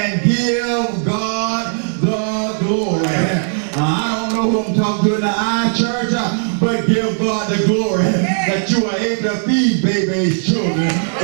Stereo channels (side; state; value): left; silent; digital silence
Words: give God the glory. I don't know who I'm talking to in the iChurch, but give God the glory that you are able to feed babies' children,